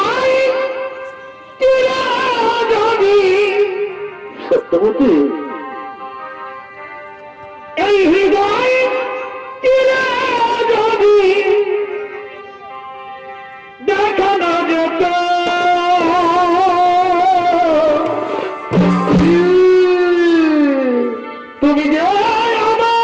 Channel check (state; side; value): identical; both; correlation 1.00